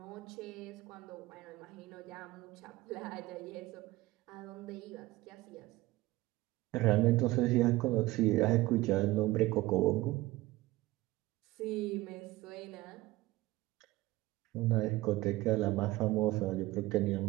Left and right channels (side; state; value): left; quieter; 18.5 dB